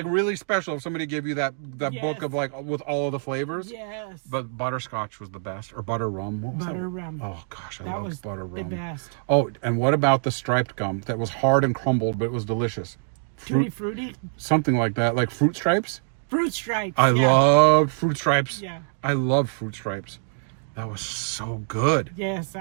really special if somebody gave you that Yes. book of like with all of the flavors. Yes. But butterscotch was the best, or butter rum. What was that? Butter rum. Oh gosh, I That loved was butter the rum. best. Oh, and what about the striped gum that was hard and crumbled, but it was delicious? Tutti Frutti. Something like that, like fruit stripes. Fruit Stripes. I yeah. loved fruit stripes. Yeah. I loved fruit stripes. That was so good. Yes,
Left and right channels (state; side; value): silent; left; digital silence